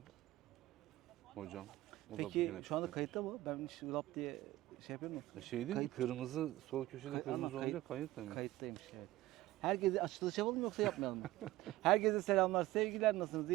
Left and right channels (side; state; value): left; quieter; 17.0 dB